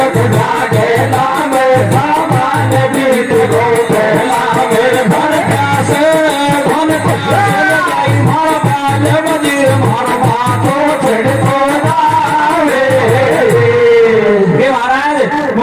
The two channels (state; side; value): identical; both; correlation 1.00